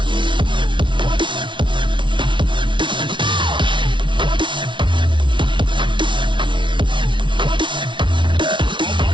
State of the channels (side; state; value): left; late; 0.24 ms